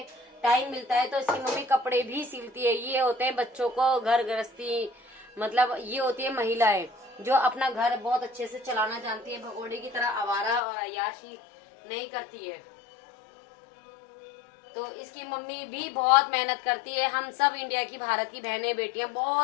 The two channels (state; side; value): drops out; right; at 10.6 s